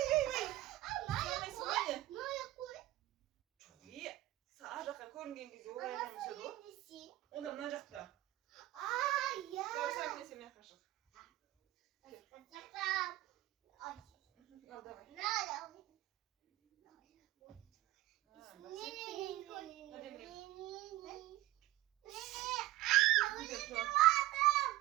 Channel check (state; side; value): quieter; left; 16.4 dB